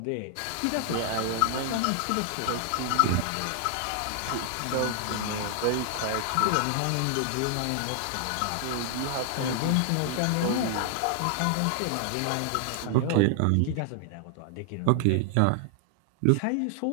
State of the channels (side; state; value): both; different; correlation 0.00